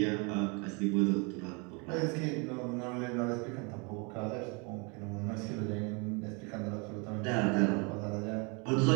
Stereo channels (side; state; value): left; quieter; 31.9 dB